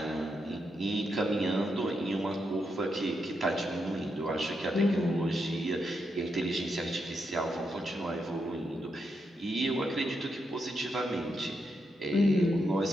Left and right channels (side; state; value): both; normal; correlation 0.83